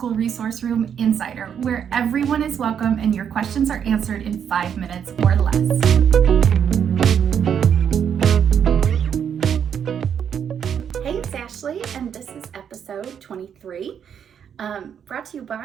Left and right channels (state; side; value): quieter; left; 8.2 dB